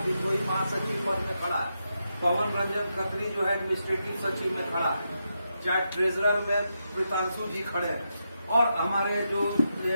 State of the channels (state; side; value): inverted; both; correlation -0.85